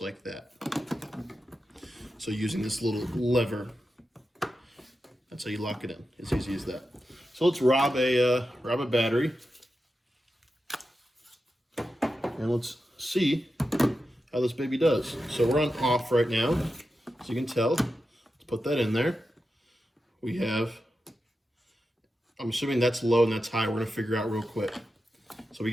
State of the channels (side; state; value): both; normal; correlation 0.90